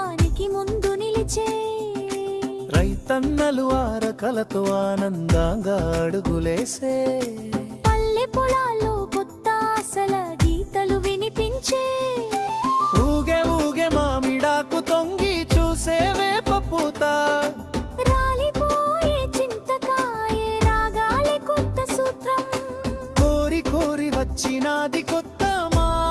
ముందు నిలిచే రైతన్నలు ఆరకలతో ఆనందంగా అడుగులేసే పల్లె పొలాల్లో కొత్త ఆశల గీతలు వినిపించే ఊగే ఊగే మామిడాకు తొంగి చూసే వేప పూత రాలిపోయే చింతకాయ రాగాలి కొత్త సూత్రం కోరి కోరి వచ్చినాది కొత్త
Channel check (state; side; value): identical; both; correlation 1.00